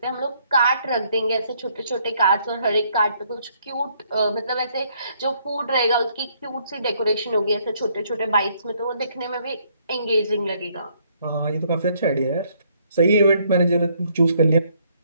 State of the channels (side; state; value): both; inverted; correlation -0.68